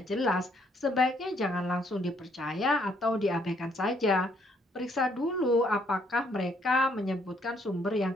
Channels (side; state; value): both; normal; correlation 0.69